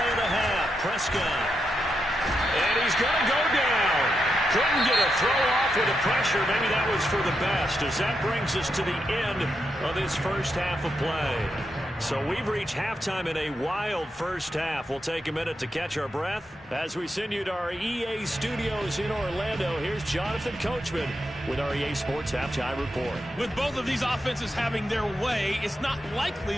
of the half. Prescott. And he's going to go down. Couldn't get a throw off with the pressure. Maybe that was for the best, as that brings us to the end of this first half of play. So we've reached halftime in a wild first half. We'll take a minute to catch our breath as we send you to our EA studios in Orlando. Here's Jonathan Coachman with our EA Sports Halftime Report. With both of these offenses having their way, it's not likely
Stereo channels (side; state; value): both; normal; correlation 0.85